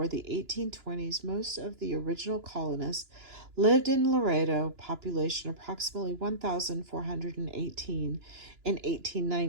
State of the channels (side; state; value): left; late; 2.9 ms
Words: the 1820s, most of the original colonists lived in Laredo, population approximately 1,418 in